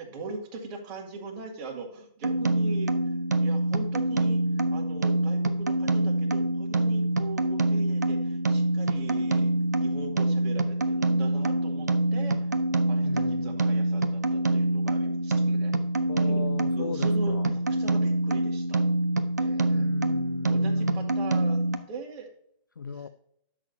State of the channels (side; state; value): both; inverted; correlation -0.86